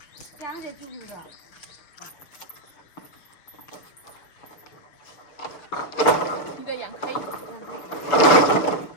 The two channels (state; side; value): late; right; 6.9 ms